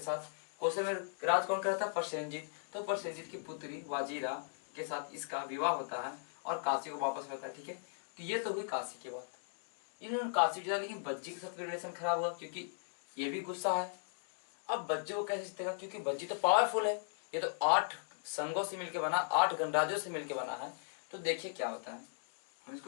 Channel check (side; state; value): right; silent; digital silence